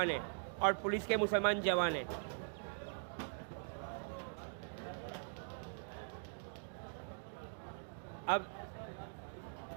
हैं और पुलिस के मुसलमान जवान हैं। अब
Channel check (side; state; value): left; silent; digital silence